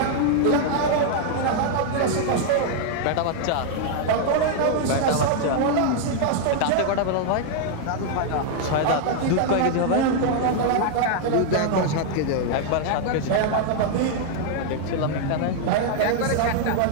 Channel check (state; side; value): different; both; correlation 0.00